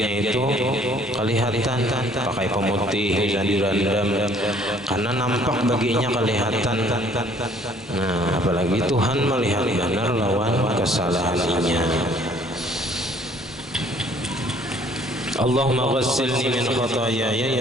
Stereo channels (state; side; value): normal; both; correlation 0.58